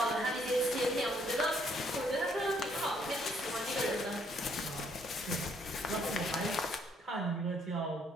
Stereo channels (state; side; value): normal; both; correlation 0.68